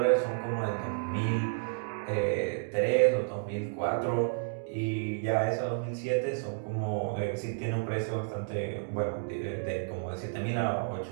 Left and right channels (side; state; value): left; silent; digital silence